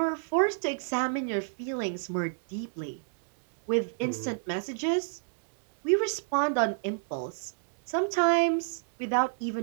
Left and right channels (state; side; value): silent; left; digital silence